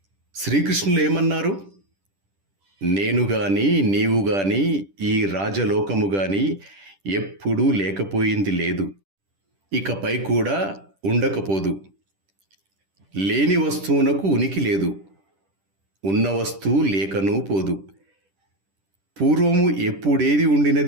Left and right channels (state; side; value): late; left; 10 ms